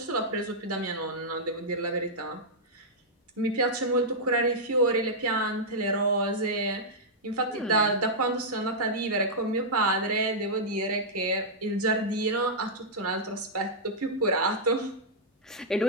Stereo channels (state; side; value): normal; both; correlation -0.08